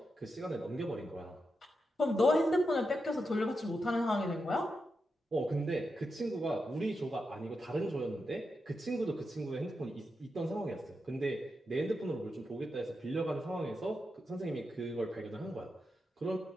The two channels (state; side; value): normal; both; correlation 0.87